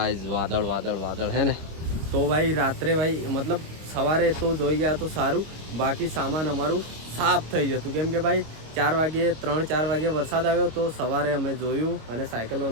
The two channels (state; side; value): late; left; 25 ms